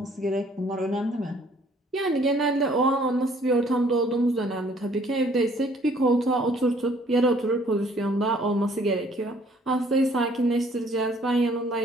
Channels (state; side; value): normal; both; correlation 0.60